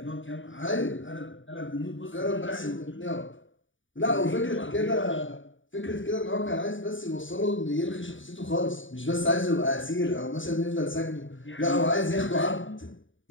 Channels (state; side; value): late; right; 0.56 ms